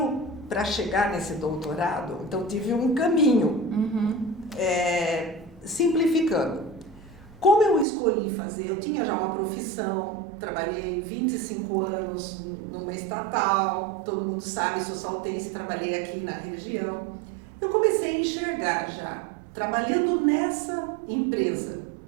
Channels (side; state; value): left; drops out; at 7.9 s